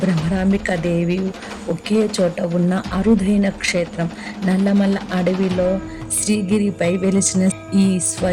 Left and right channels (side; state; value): both; identical; correlation 1.00